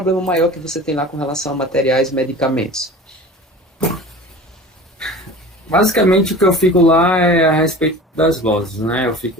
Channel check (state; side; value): normal; both; correlation 0.39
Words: maior que você tem lá com relação a materiais e medicamentos? Basicamente, o que eu fico lá é a respeito das glosas, né? Eu